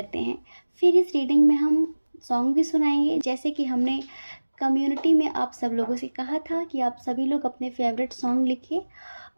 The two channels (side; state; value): both; inverted; correlation -1.00